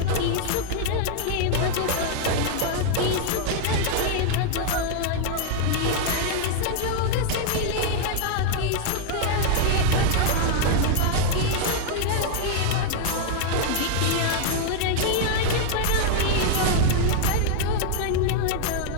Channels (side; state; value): both; different; correlation 0.00